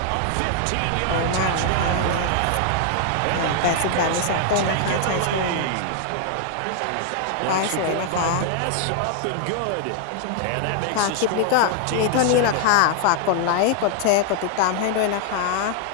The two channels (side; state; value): both; different; correlation 0.00